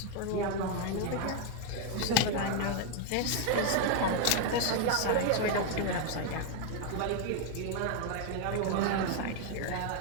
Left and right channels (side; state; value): both; different; correlation 0.01